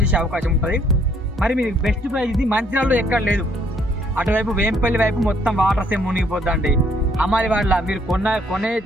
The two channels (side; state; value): both; normal; correlation 0.66